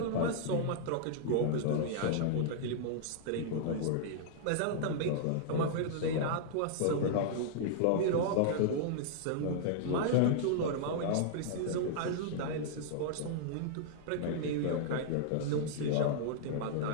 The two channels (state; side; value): different; both; correlation -0.01